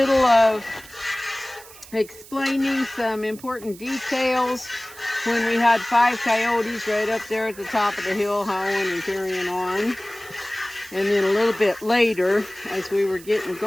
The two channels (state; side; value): noise; right; hiss, 19 dB below the sound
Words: of explaining some important details when we had 5 coyotes right up there at the top of the hill howling and carrying on. And then a little bit later, as we were getting